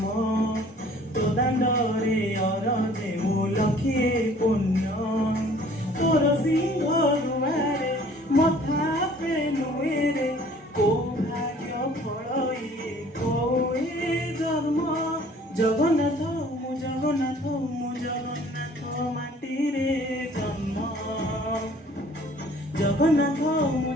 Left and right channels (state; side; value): normal; both; correlation 0.54